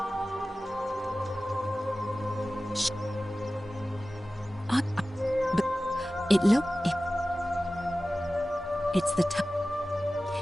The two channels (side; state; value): both; normal; correlation 0.96